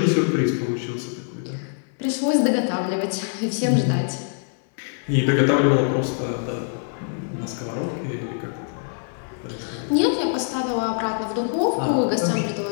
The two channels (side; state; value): right; silent; 63 dB below the other